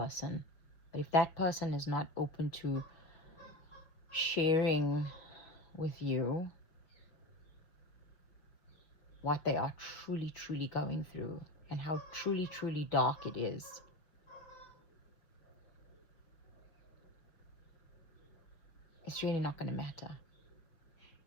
but if that person is not open to sharing with you what they are truly going through and how truly dark it is, it's really not going to matter.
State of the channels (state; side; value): late; right; 6.1 ms